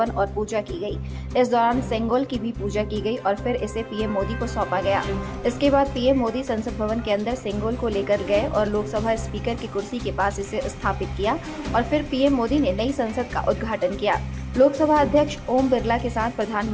और पूजा की गई। इस दौरान सेंगोल की भी पूजा की गई और फिर इसे पीएम मोदी को सौंपा गया। इसके बाद पीएम मोदी संसद भवन के अंदर सेंगोल को लेकर गए और लोकसभा स्पीकर की कुर्सी के पास इसे स्थापित किया और फिर पीएम मोदी ने नई संसद का उद्घाटन किया। लोकसभा अध्यक्ष ओम बिरला के साथ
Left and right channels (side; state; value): both; identical; correlation 1.00